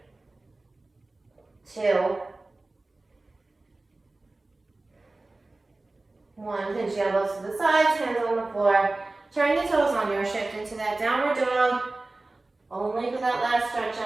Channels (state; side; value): quieter; left; 3.1 dB